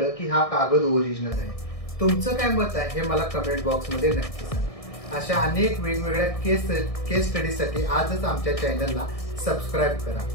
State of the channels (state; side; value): late; right; 1.6 ms